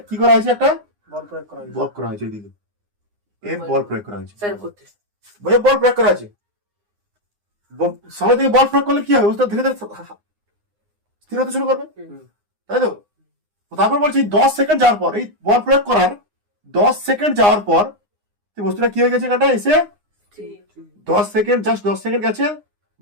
কি করা হয়েছে? একটা বল প্রয়োগ করা হয়েছে। বল করা হয়েছে, এইদিকে এফ বল প্রয়োগ করা হয়েছে। স্যার করতে বল প্রয়োগ করা আছে। সামনের দিকে বল প্রয়োগ করলে কি হবে? বস্তুটা ধীরে ধীরে স্থির হতে শুরু করবে, তাই তো? তারপর বলছি 10 সেকেন্ড যাওয়ার পর, এই বল প্রয়োগ করার 10 সেকেন্ড যাওয়ার পর বস্তুটা কি হয়ে গেছে? এখানটা এসে 10 সেকেন্ড, জাস্ট 10 সেকেন্ড গেছে,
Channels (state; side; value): late; left; 9.7 ms